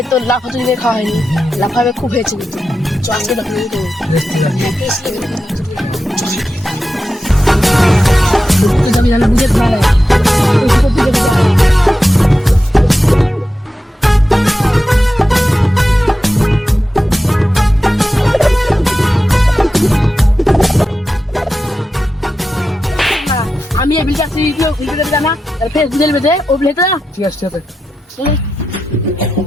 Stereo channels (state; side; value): normal; both; correlation 0.90